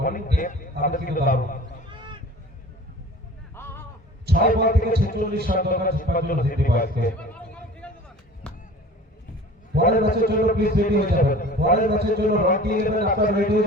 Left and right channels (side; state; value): both; normal; correlation 0.42